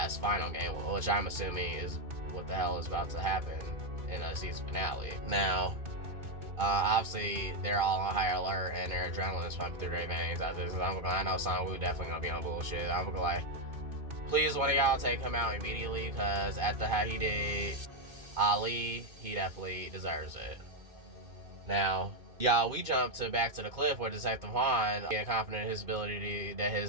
final game, which I'm assuming is what the hell is about to happen in a season finale. Now, obviously they're all on high alert and their adrenaline is pumping through their veins after this. I know Sang-woo definitely gonna be on bullshit. I'm gonna like, please one of y'all take him out immediately, because after how he did Ali, he definitely deserves it. Now, y'all, we jump back to the cliff where Detective Juan getting confident in his ability that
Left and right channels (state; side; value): late; left; 2.6 ms